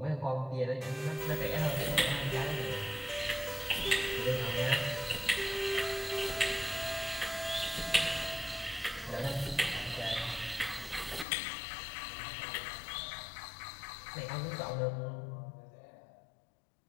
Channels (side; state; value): right; drops out; at 11.2 s